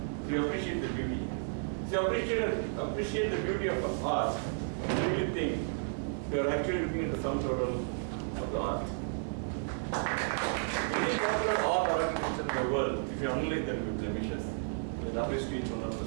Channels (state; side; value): silent; left; digital silence